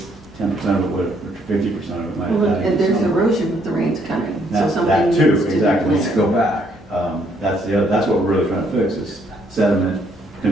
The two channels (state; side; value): normal; both; correlation 0.69